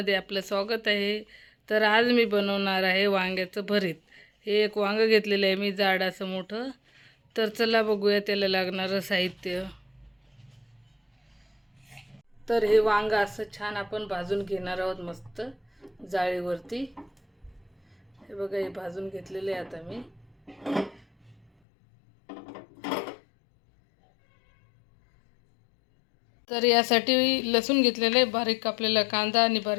आपलं स्वागत आहे. तर आज मी बनवणार आहे वांग्याचं भरीत. हे एक वांगं घेतलेलं आहे मी, जाड असं मोठं. तर चला बघूया त्याला लागणारं साहित्य. तर हे वांगं असं छान आपण भाजून घेणार आहोत मस्त जाळीवरती. हे बघा, हे भाजून घेतलेले आहे आता मी. तर यासाठी लसूण घेतलेलं आहे, बारीक कापलेला कांदा आणि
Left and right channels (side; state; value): right; drops out; at 21.5 s